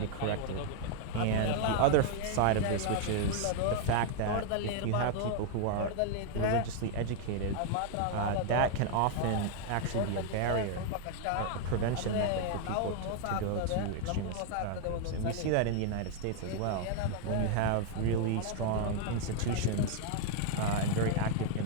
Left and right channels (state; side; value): different; both; correlation 0.00